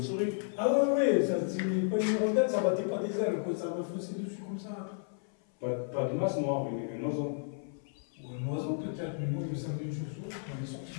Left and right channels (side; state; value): right; silent; 56 dB below the other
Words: Ah ouais, ça, c'est pas une rondelle, ça battait pas des ailes, quoi. Ça m'a faussé dessus comme ça. Pas de masse noire, un oiseau. Ou un oiseau, peut-être, mais moi, il me semblait une chauve-souris. Elle est sortie